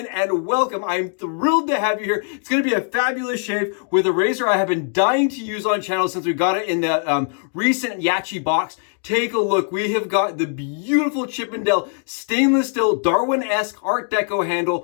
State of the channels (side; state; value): right; silent; 56 dB below the other